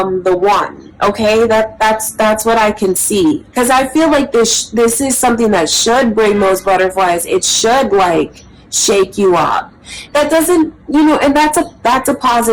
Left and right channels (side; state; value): both; identical; correlation 1.00